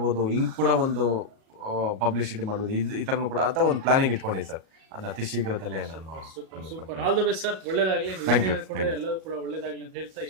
ಹಿಂಗೆ ಕೂಡ ಒಂದು ಪಬ್ಲಿಸಿಟಿ ಮಾಡ್ಬೋದು, ಈ ಥರನೂ ಕೂಡ ಅಂತ ಒಂದು ಪ್ಲಾನಿಂಗ್ ಇಟ್ಕೊಂಡಿದ್ದೀನಿ ಸರ್. ಅದನ್ನ ಅತಿ ಶೀಘ್ರದಲ್ಲೇ ನಾನು super, all the best sir, ಒಳ್ಳೇದಾಗ್ಲಿ. Thank you. ಎಲ್ಲರೂ ಕೂಡ ಒಳ್ಳೇದಾಗ್ಲಿ ಅಂತ ಹೇಳ್ತಾ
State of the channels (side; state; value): left; late; 37 ms